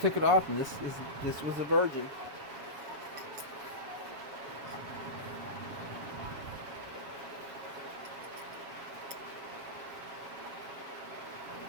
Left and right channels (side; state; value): left; late; 7.3 ms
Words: it off, and this was a virgin.